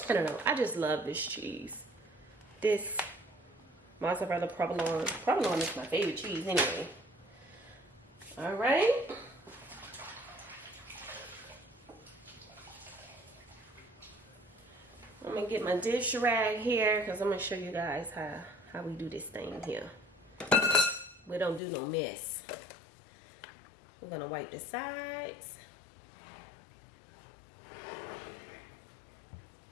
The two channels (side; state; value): right; drops out; at 21.6 s